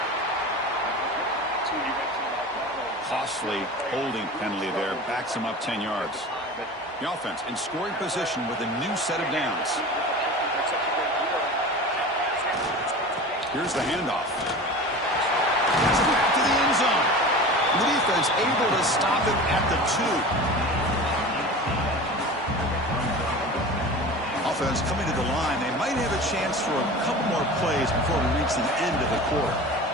Costly holding penalty there. Backs him up 10 yards. The offense in scoring position with a new set of downs. Here's the handoff. It's back to the end zone. The defense able to stop it at the 2. Offense coming to the line. They might have a chance for a couple more plays before we reach the end of the quarter.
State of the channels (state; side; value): normal; both; correlation 0.34